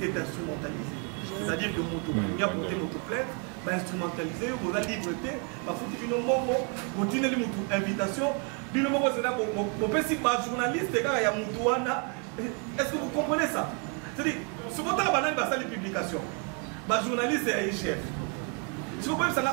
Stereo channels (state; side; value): quieter; left; 36.9 dB